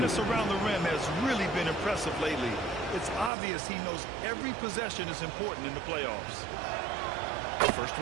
around the rim has really been impressive lately. It's obvious he knows every possession is important in the playoffs. First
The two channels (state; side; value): drops out; left; at 3.3 s